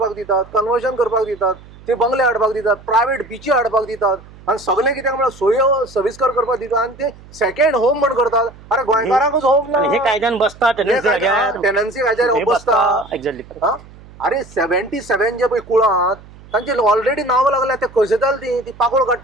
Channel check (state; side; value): noise; right; hum, 21 dB below the sound